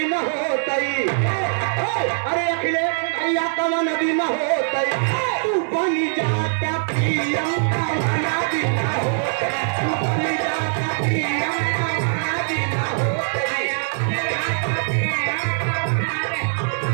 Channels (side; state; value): left; silent; digital silence